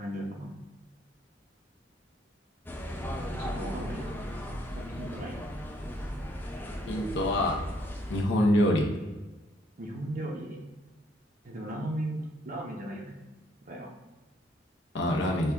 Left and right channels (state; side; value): normal; both; correlation 0.68